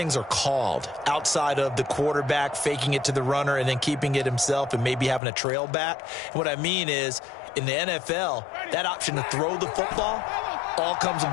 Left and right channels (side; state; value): right; drops out; at 5.2 s